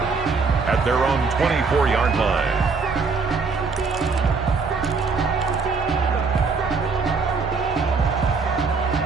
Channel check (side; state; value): left; quieter; 4.7 dB